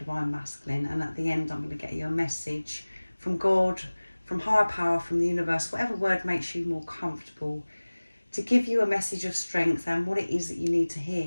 Masculine, and at the end I'm going to get you a message from God, from higher power, from the universe, whatever word makes you more comfortable, to give you a message of strength and what it is that you need to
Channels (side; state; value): both; inverted; correlation -1.00